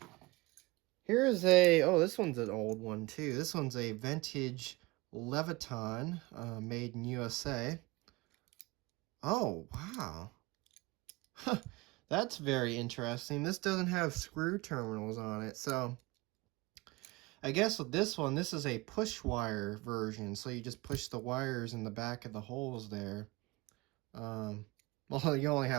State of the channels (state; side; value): quieter; left; 23.0 dB